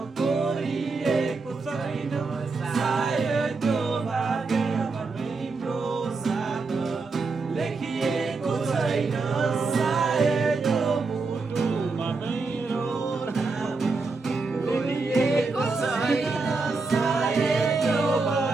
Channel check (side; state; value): left; quieter; 4.0 dB